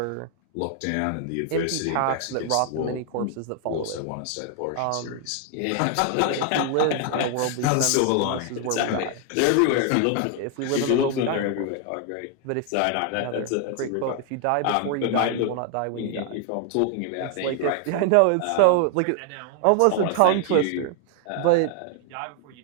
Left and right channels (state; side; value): different; both; correlation 0.00